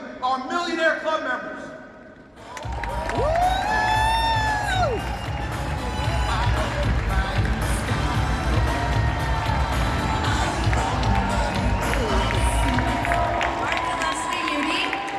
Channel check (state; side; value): identical; both; correlation 1.00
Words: our Millionaire Club members.